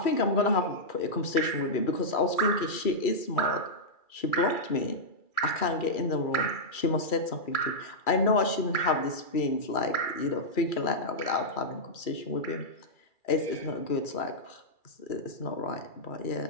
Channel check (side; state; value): right; late; 2.4 ms